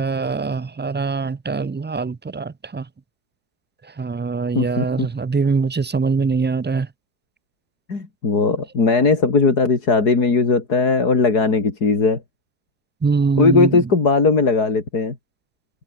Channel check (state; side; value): normal; both; correlation 0.09